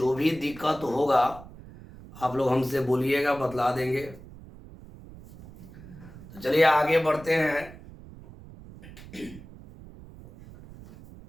भी दिक्कत होगा आप लोग हमसे बोलिएगा, बतला देंगे। तो चलिए आगे बढ़ते हैं।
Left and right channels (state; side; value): noise; right; rumble, 18 dB below the sound